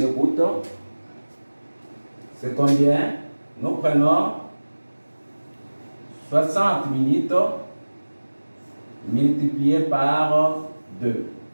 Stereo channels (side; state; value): both; inverted; correlation -1.00